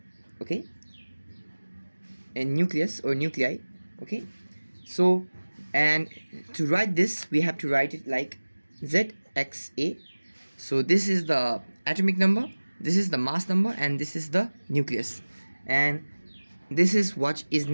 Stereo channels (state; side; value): inverted; both; correlation -1.00